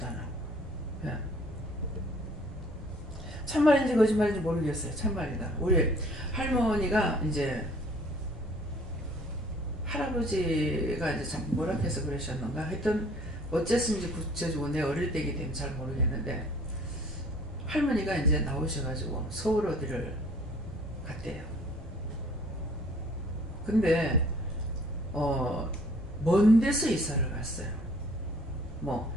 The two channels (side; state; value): both; normal; correlation 0.55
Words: 않아. 예. 참말인지 거짓말인지 모르겠어요. 참말이다. 우리 할머니가 이제 할아버지가 이제 참 뭐라 해서 그러셨는가 하여튼 어쨌든지 구체적으로 내 어릴 때이기 때문에 잘 모르겠는데 할머니가 이제 나오셔가지고 서울 어디를 갔대요. 근데 먼 데서 이사를 갔어요. 뭐